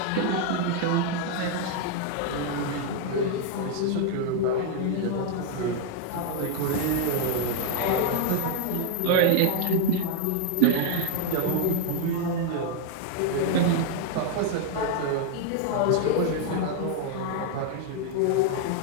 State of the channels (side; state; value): both; different; correlation 0.00